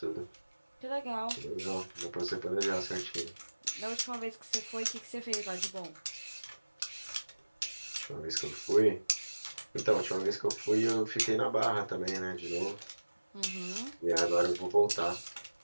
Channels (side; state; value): both; inverted; correlation -1.00